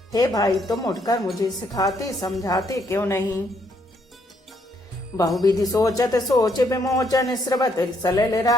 हे भाई, तुम उठकर मुझे सिखाते समझाते क्यों नहीं। बहुविधि सोचत सोच विमोचन, स्रवत सलिल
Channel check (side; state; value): both; normal; correlation 0.72